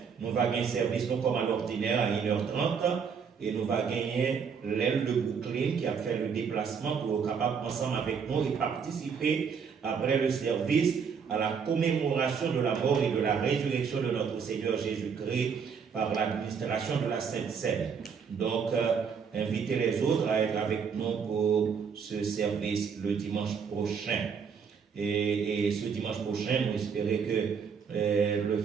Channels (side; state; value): left; quieter; 6.4 dB